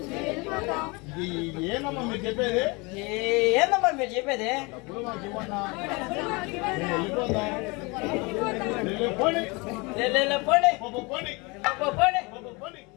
ఏనమ్మా మీరు చెప్పేది? ఏందమ్మా మీరు చెప్పేది? డబ్బులు మాకు ఇవ్వన్నా, మేము వెళ్ళిపోతాం. పోనీ పోనీ పోనీ పోనీ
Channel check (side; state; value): right; quieter; 27.2 dB